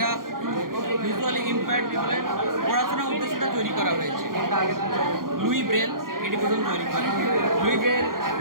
ভিজুয়ালি ইম্পেয়ার্ড পিপলের পড়াশোনার উদ্দেশ্যটা তৈরি করা হয়েছে। লুই ব্রেল এটি প্রথম তৈরি করে। Louis Braille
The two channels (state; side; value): late; left; 0.91 ms